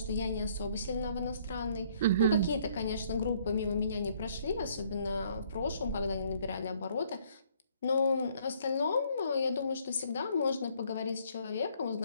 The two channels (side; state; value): both; inverted; correlation -0.64